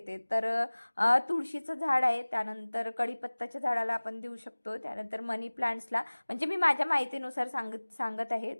तर तुळशीचं झाड आहे, त्यानंतर कढीपत्ताच्या झाडाला आपण देऊ शकतो, त्यानंतर मनी प्लांट्सला, म्हणजे मी माझ्या माहितीनुसार सांगत आहे.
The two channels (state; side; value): inverted; both; correlation -1.00